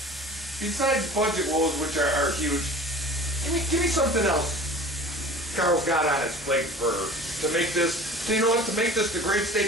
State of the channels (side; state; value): both; normal; correlation 0.41